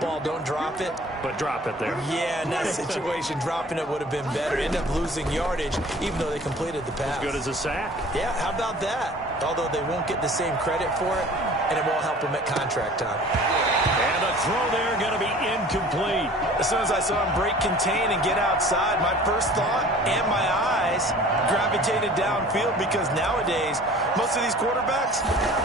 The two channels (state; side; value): normal; both; correlation 0.46